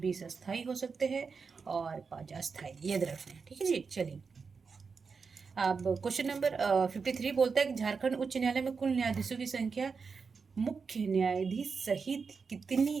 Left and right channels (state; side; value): quieter; left; 5.2 dB